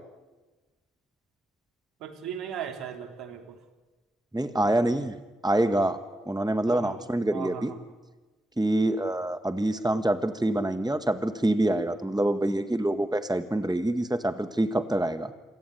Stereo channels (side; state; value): both; normal; correlation 0.89